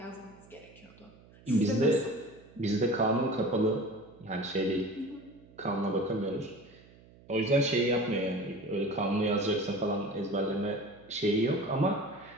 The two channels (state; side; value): noise; right; hum, 24 dB below the sound